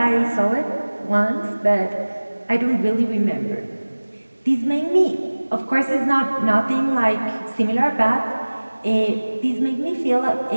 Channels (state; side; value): inverted; both; correlation -1.00